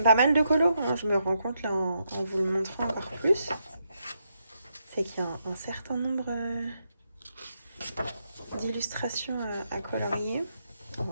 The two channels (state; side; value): inverted; both; correlation -0.80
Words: pas mal de colos, hein. Je me rends compte là en vous le montrant encore plus. C'est qu'il y a un certain nombre d'illustrations à colorier. Oh,